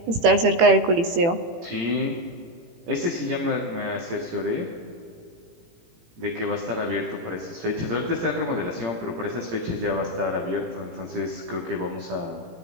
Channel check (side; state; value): left; late; 18 ms